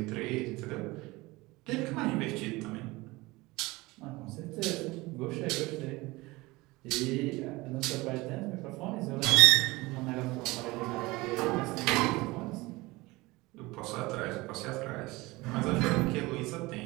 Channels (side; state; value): left; quieter; 21.6 dB